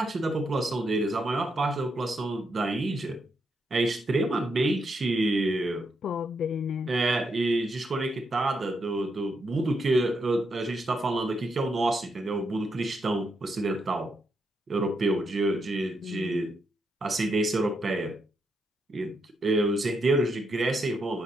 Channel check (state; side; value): normal; both; correlation 0.81